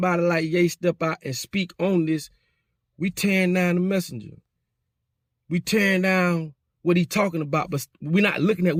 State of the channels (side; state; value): both; identical; correlation 1.00